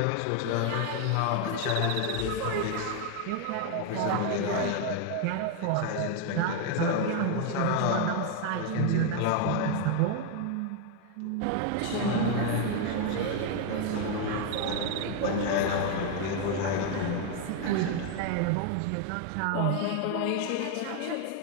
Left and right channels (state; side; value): different; both; correlation 0.01